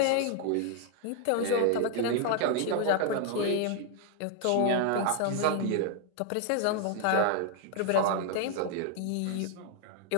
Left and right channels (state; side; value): different; both; correlation 0.00